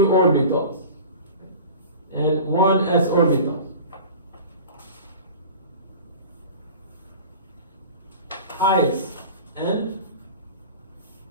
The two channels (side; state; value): both; inverted; correlation -0.38